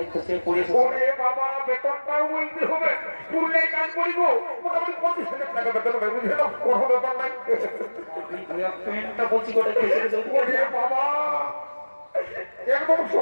খসে পড়েছে ওরে বাবা বেতনটাও বলতে হবে পুরুলে কাজ করিব মোটামুটি 25,000 টাকা বেতন হবে বুঝলে না কোনো ব্যাপার নাই প্যান্টটা বলছি কোথায় খসে গেছে ওরে বাবা একদম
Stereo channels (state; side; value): inverted; both; correlation -1.00